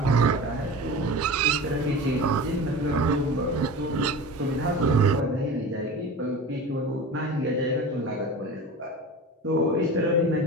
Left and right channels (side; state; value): both; normal; correlation 0.33